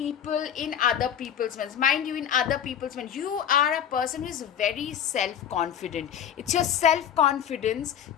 in other people's minds. Mind you, in other people's minds, you are a person who is very self-confident. It's your self-confidence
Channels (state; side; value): quieter; right; 9.0 dB